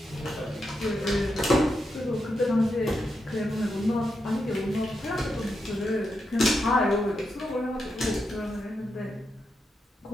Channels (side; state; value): both; normal; correlation 0.85